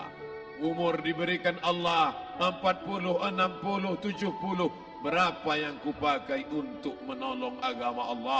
Umur diberikan Allah 40, 60, 70. Berapa yang kupakai untuk menolong agama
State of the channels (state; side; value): identical; both; correlation 1.00